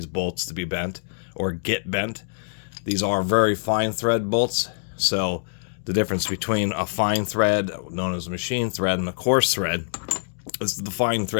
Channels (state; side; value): silent; right; digital silence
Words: bolts to be bent or get bent. These are very fine thread bolts, so the difference between a fine thread, known as a machine thread, and a coarse thread is the fine